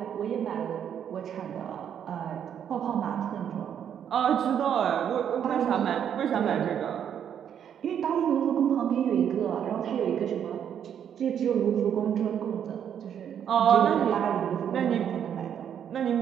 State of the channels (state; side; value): quieter; left; 8.9 dB